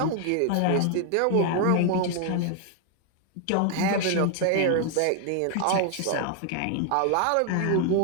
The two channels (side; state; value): both; different; correlation 0.00